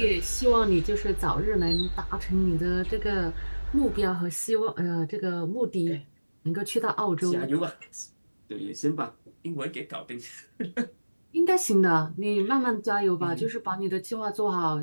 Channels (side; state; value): both; inverted; correlation -1.00